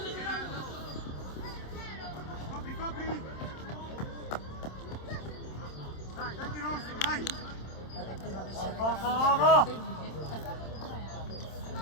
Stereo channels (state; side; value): late; right; 27 ms